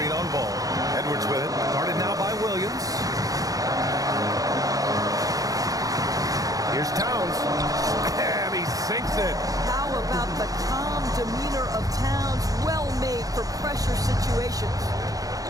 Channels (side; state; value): left; late; 0.17 ms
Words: on Ball. Edwards with it. Guarded now by Williams. Here's Towns. And he sinks it. How about the calm demeanor of Towns? Well made for pressure situations.